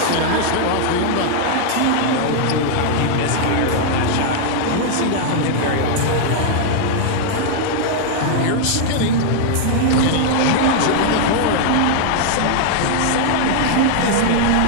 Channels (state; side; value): different; both; correlation 0.00